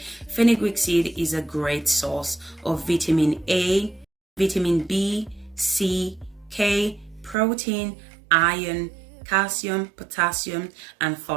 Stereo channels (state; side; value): drops out; left; at 7.4 s